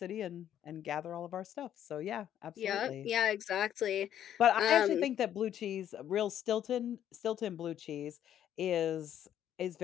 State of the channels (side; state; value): right; quieter; 10.5 dB